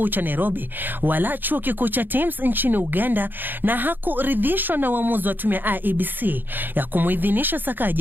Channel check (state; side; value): late; left; 0.092 ms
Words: cha Nairobi wala Chuo Kikuu cha Thames nchini Uganda na hakuridhishwa na uamuzi wa tume ya IEBC ya kumuidhinisha